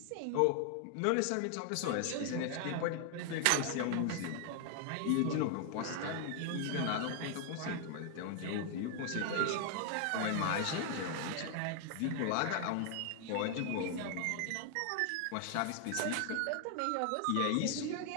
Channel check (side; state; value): both; different; correlation 0.00